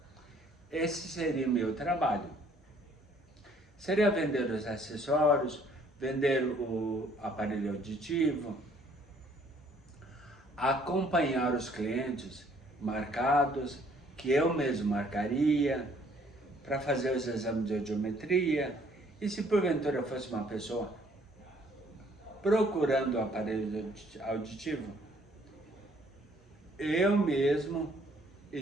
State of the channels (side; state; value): both; normal; correlation 0.62